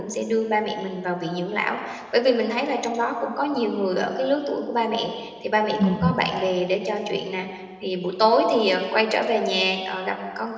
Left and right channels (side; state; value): both; identical; correlation 1.00